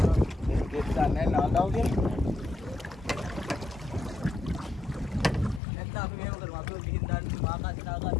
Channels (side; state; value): right; drops out; at 5.6 s